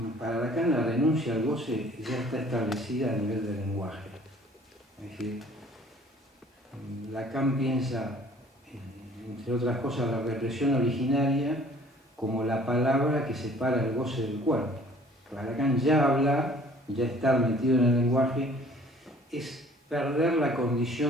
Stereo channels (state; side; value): normal; both; correlation 0.54